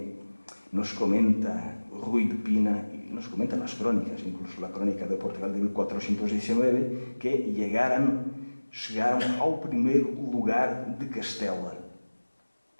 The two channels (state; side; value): inverted; both; correlation -1.00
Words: nos comenta Ruy de Pina, y nos comentan las crónicas, incluso la crónica de Portugal de 1419, que chegaram ao primeiro lugar de Castela,